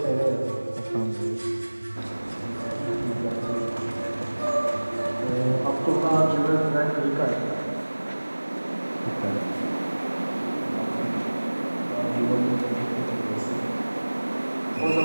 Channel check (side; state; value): both; inverted; correlation -1.00